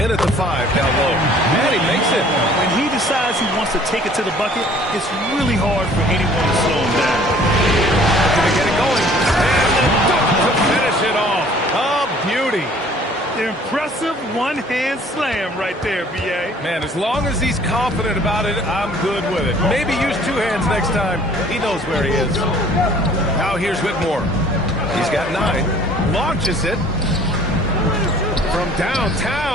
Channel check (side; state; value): both; normal; correlation 0.54